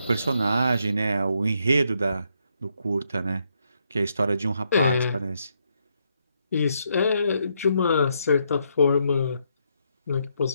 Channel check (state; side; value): inverted; both; correlation -0.77